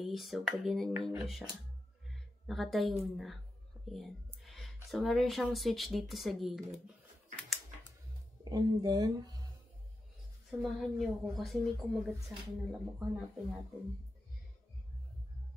So pag ginanyan nyo siya, nakatayo na. Ayan. So, meron siyang switch dito sa gilid. And then, samahan niyo ako kasi may kumagat sa akin ng lamok. Hanapin natin.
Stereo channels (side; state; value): both; normal; correlation 0.89